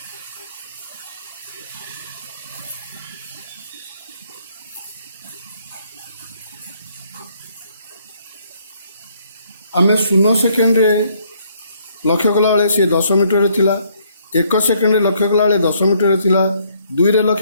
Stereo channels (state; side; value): inverted; both; correlation -0.67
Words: आम 0 सेकेंड लक्ष्य कला बेले सी 10 मीटर थिला। 1 सेकेंड लक्ष्य कला बेले 10 मीटर थिला। 2 रे